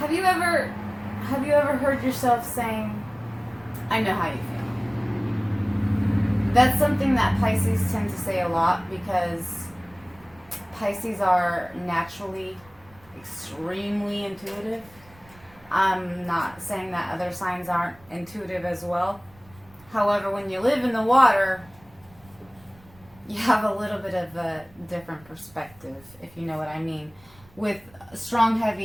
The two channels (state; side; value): noise; right; rumble, 26 dB below the sound